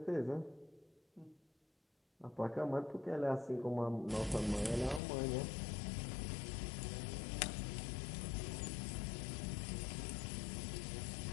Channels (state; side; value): drops out; right; at 5.0 s